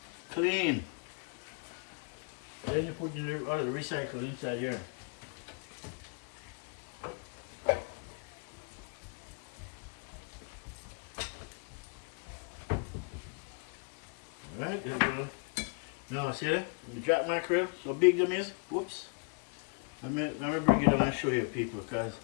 Clean. Then you put the recycle inside here. Alright, there we go. Now see that? The jack mackerel, so big them is. Whoops. Let me bring it down and show you people, because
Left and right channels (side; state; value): right; quieter; 37.3 dB